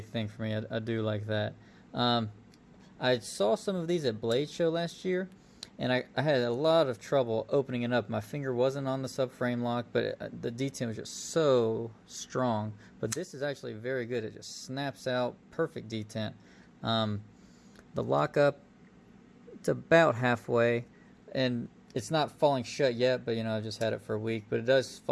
thing for me. I do like that. I saw some of these at Blade Show last year, and I had a lot of trouble opening it up. My finger wasn't on the subframe lock, but the detent was just so strong. But this is actually very good. It just snaps out, perfect detent. The lockup, it's about halfway, and it's not falling shut yet, but you know, I've just had it for a week, but it does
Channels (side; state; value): both; identical; correlation 1.00